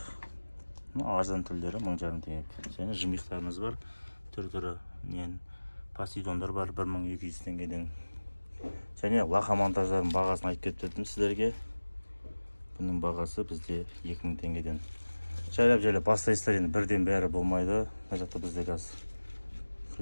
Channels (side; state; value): both; inverted; correlation -1.00